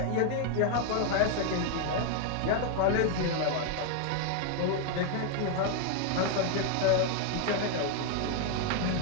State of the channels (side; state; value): both; different; correlation 0.00